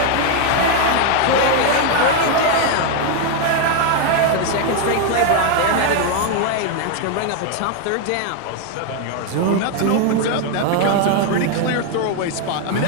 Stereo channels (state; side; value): different; both; correlation 0.01